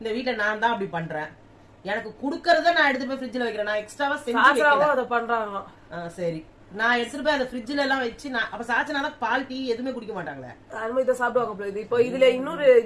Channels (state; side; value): identical; both; correlation 1.00